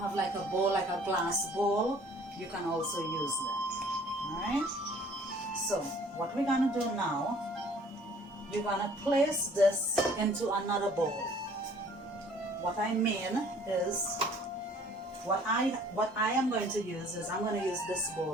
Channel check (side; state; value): both; normal; correlation 0.55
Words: a bowl, like a glass bowl, you can also use that. Alright? So what we're gonna do now, you're gonna place this into another bowl. What I mean is, what I am going to use is, I'm going to use this